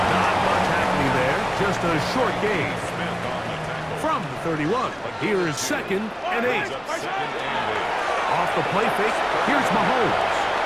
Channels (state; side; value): identical; both; correlation 1.00